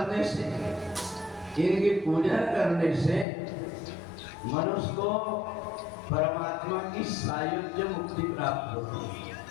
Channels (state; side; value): drops out; right; at 3.2 s